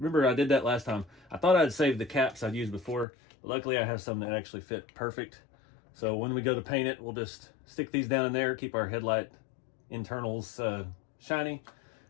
I did that last time. I thought I'd saved the caps I'd used before. But luckily I have some that actually fit perfect. So when we go to paint it, we'll just stick these down in there, keep our headlight internals shiny.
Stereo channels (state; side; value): drops out; right; at 3.1 s